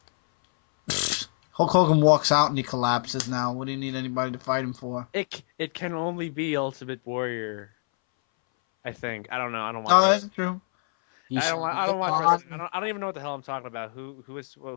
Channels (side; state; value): right; silent; 61 dB below the other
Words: Hulk Hogan walks out and he collapses now. What do you need anybody to fight him for? It can only be Ultimate Warrior. I think. I don't know. I don't watch. Oh, that's true. I don't watch wrestling. I don't even know what the hell I'm talking about. Who?